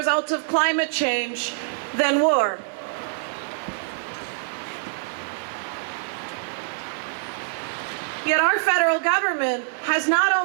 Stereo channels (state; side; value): silent; left; digital silence